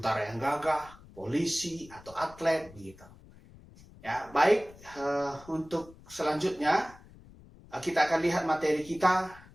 yang gagah, polisi, atau atlet begitu? Ya, baik. Untuk selanjutnya kita akan lihat materi kita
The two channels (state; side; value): noise; left; rumble, 22 dB below the sound